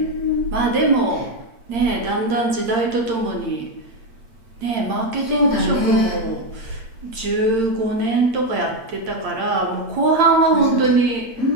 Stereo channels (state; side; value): late; left; 8.8 ms